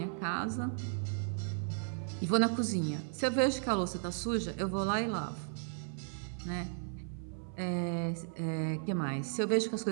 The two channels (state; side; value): silent; left; 54 dB below the other